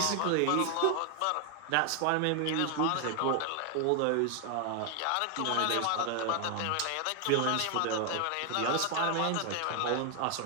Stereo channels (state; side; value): different; both; correlation 0.00